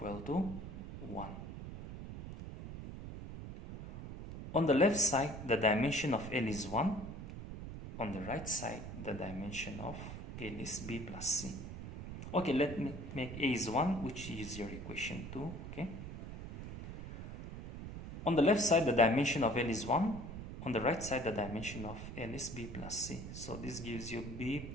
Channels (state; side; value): noise; right; rumble, 9 dB below the sound